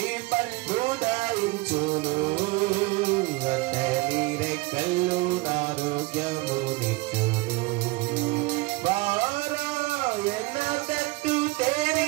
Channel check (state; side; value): quieter; left; 23.3 dB